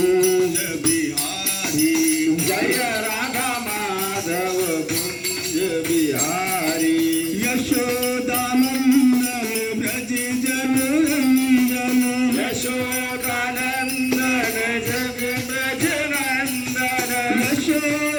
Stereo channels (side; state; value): both; identical; correlation 1.00